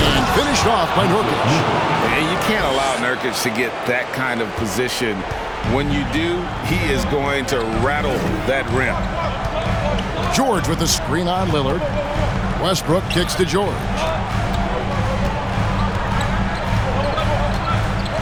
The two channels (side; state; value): both; identical; correlation 1.00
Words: And finished off by Nurkic. And you can't allow Nurkic to get that kind of position. When you do, he is going to rattle that rim. George with the screen on Lillard. Westbrook kicks to George.